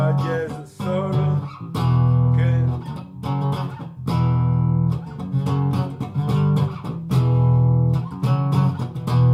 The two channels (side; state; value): both; identical; correlation 1.00